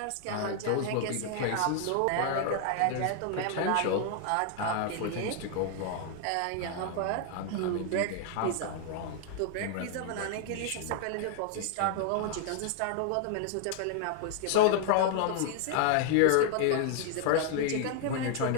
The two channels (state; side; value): different; both; correlation 0.00